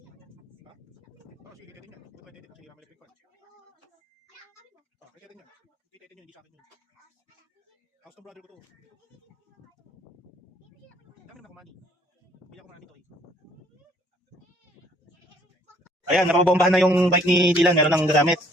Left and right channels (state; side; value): normal; both; correlation 0.61